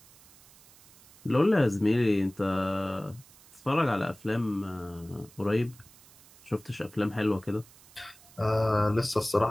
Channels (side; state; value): right; noise; hiss, 25 dB below the sound